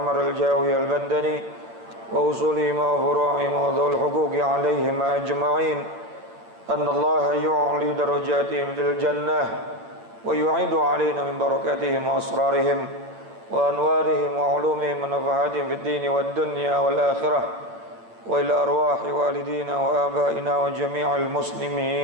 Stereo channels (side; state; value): left; late; 8.8 ms